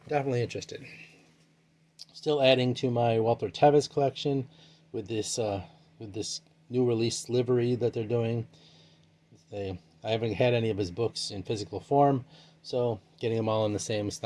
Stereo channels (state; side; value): identical; both; correlation 1.00